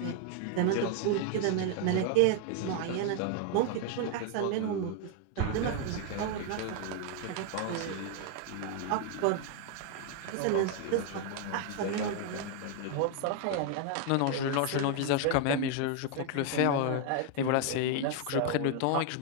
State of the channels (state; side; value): different; both; correlation 0.00